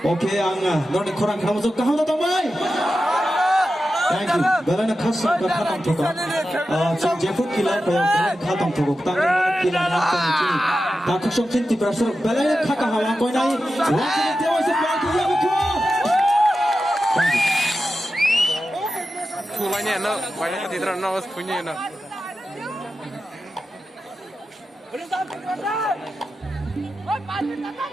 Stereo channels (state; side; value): normal; both; correlation 0.91